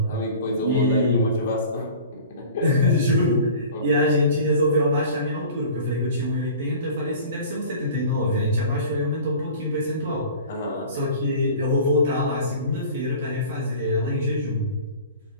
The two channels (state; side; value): inverted; both; correlation -0.42